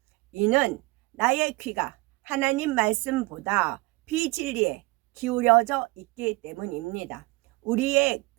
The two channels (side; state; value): left; quieter; 23.3 dB